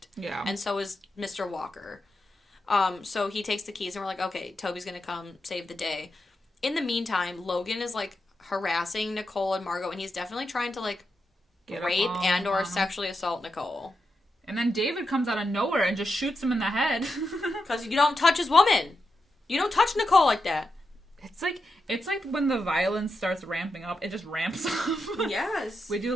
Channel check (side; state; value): both; normal; correlation 0.87